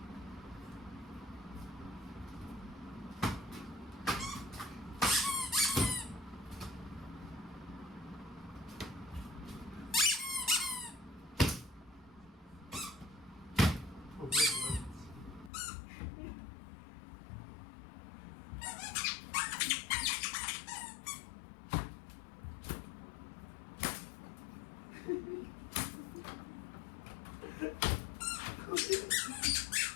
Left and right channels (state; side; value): drops out; right; at 15.5 s